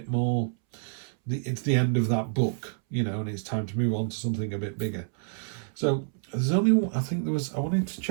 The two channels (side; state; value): left; silent; 59 dB below the other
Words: more. It's the end of that book, you know, and it's time to move on to something a bit bigger. So there's only, I think there was, I wanted to